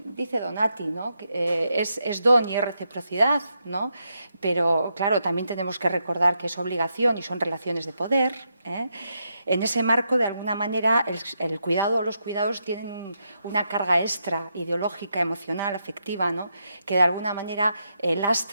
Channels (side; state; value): both; inverted; correlation -0.82